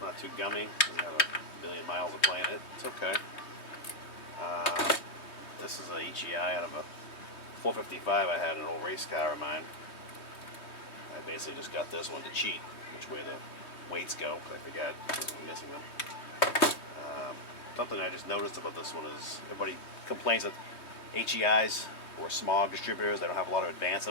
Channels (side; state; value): right; late; 3.2 ms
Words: not too gummy. Doesn't have a million miles of playing it. It's okay. This is a HEI out of a 455 I had an old race car of mine. I basically just got this one to cheat which way the weights go, because I forgot because I'm missing them. Something I just noticed about this one is everybody complains that HEIs or smog distributors, they don't have a lot of advance